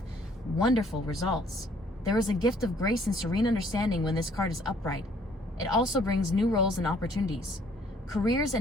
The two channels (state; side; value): normal; both; correlation 0.61